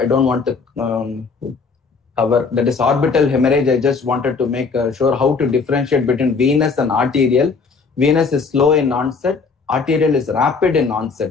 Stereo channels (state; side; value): quieter; right; 4.8 dB